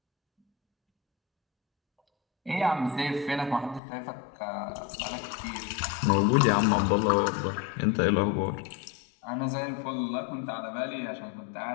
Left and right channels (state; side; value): drops out; right; at 3.8 s